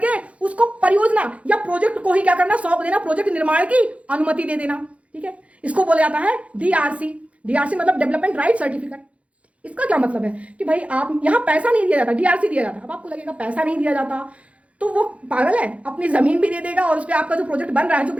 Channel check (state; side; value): late; left; 0.064 ms